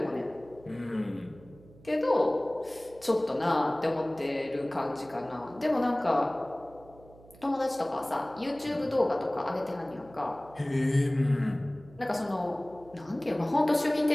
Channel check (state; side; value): noise; right; hum, 23 dB below the sound